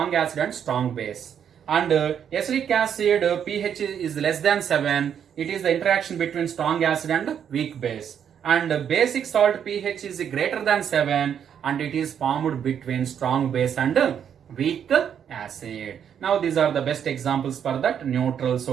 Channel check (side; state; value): left; quieter; 8.5 dB